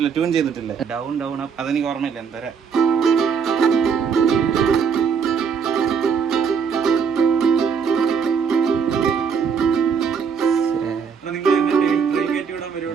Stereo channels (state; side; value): quieter; left; 6.3 dB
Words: ട്യൂൺ ചെയ്തിട്ടില്ല. ഡൗൺ ഡൗൺ അപ്പ് അതെനിക്ക് ഓർമ്മയില്ല. എന്തരാ